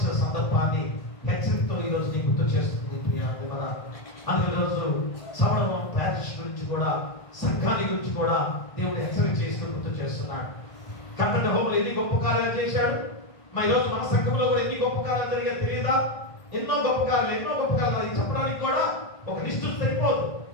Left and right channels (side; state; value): right; late; 1.5 ms